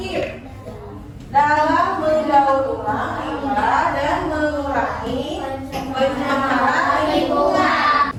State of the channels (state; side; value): identical; both; correlation 1.00